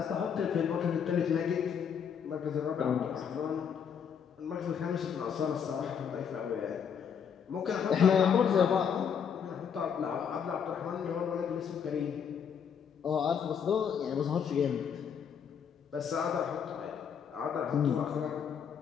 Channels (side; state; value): right; quieter; 7.4 dB